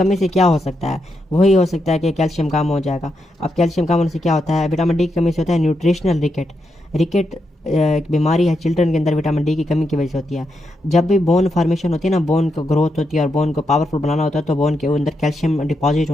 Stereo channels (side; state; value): both; normal; correlation 0.83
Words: से क्या हो सकता है? वही हो सकता है कि कैल्शियम कम हो जाएगा। अब कैल्शियम कम होने से क्या होता है? विटामिन डी की कमी से होता है न्यूट्रिशनल रिकेट। रिकेट एक बीमारी है चिल्ड्रन के अंदर, विटामिन डी की कमी की वजह से होती है। जब भी बोन फॉर्मेशन होती है ना, बोन को ग्रोथ होती है और बोन को पावरफुल बनाना होता है तो बोन के अंदर कैल्शियम डिपॉजिट